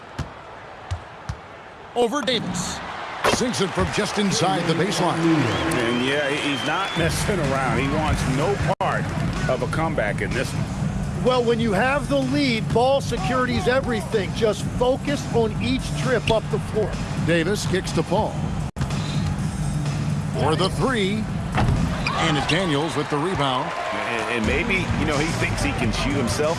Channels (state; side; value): identical; both; correlation 1.00